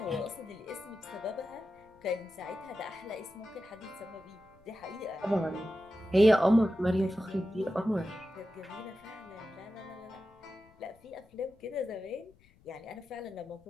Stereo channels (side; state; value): left; noise; rumble, 29 dB below the sound